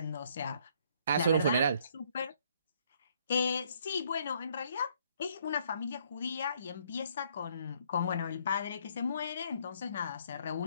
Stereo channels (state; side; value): inverted; both; correlation -0.66